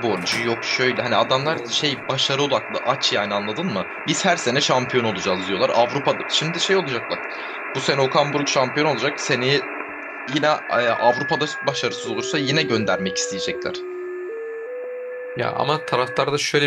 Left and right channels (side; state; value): both; identical; correlation 1.00